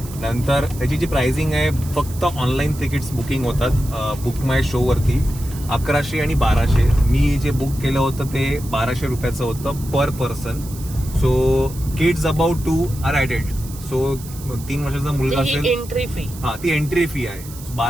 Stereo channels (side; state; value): right; noise; hiss, 16 dB below the sound